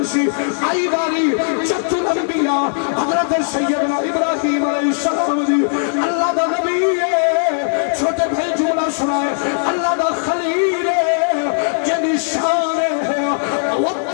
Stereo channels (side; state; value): right; silent; digital silence